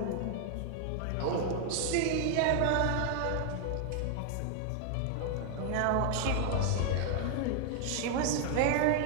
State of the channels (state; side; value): different; both; correlation 0.00